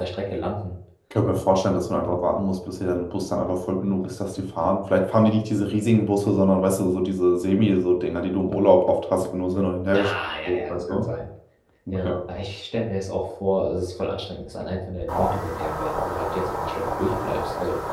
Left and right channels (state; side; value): identical; both; correlation 1.00